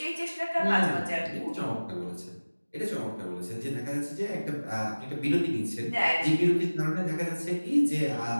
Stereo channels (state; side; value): inverted; both; correlation -1.00